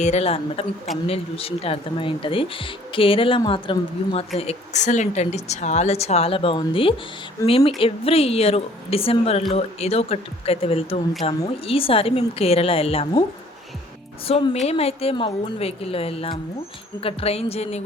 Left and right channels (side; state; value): both; normal; correlation 0.56